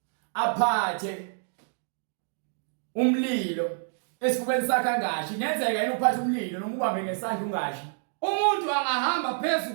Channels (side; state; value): left; silent; digital silence